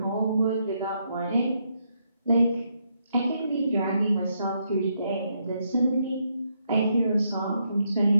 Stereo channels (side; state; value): both; inverted; correlation -0.77